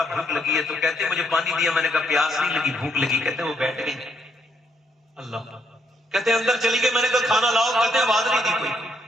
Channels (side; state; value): both; normal; correlation 0.73